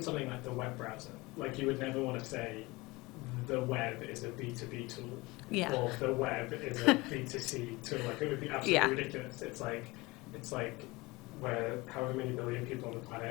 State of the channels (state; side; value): quieter; right; 22.8 dB